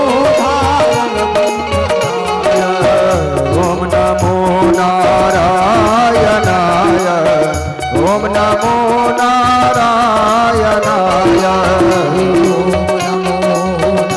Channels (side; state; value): both; identical; correlation 1.00